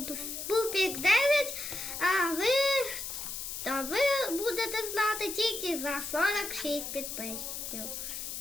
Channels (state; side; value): noise; left; hiss, 6 dB below the sound